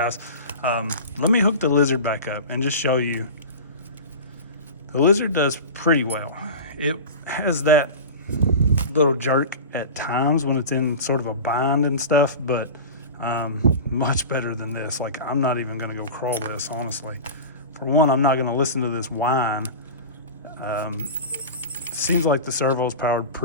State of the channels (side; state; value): both; inverted; correlation -0.31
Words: Let me hook the Lizard back up and just show you. The Lizard does pretty well. It has that little jerk at times when it's in sort of a bind and stuff, but much better than this. Like, I'm not even gonna go crawl this, honestly. For one, I'm not gonna listen to this whine. Seems like the servo's powered